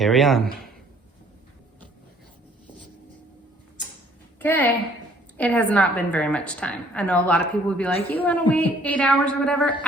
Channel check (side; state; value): both; normal; correlation 0.59